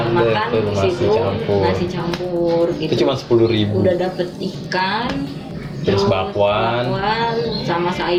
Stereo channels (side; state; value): both; identical; correlation 1.00